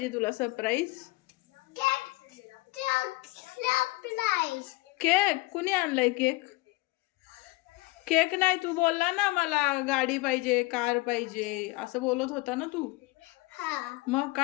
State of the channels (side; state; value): right; quieter; 22.3 dB